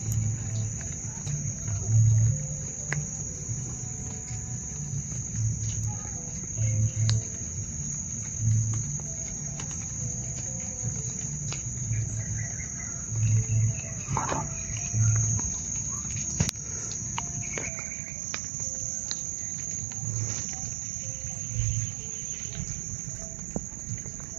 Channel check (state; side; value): drops out; left; at 17.7 s